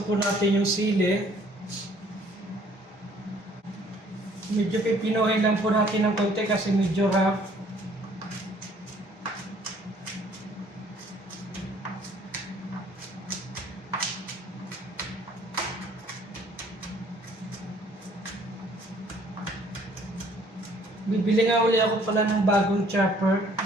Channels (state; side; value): normal; both; correlation 0.59